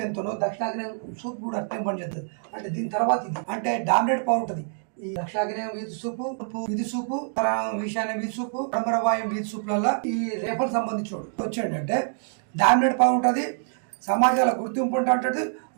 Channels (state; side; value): silent; left; digital silence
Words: ఎంతనో దక్షిణాగ్నేయం సూప్ కూడా అట్లే పనిచేస్తుంది. అంటే దీని తర్వాత ఇది అంటే డామినేట్ పవర్ ఉంటుంది. ఈ దక్షిణాగ్నేయం వీధి సూపు, వీధి సూపు, ఈశాన్య వీధి సూపు, పరమరవాయం వీధి సూపులలో ఈ రేపకు సంబంధించి వచ్చేటంటే డామినేట్ పవర్ ఉంటుంది. సమాజాల గుర్తింపు ఉంటుంది.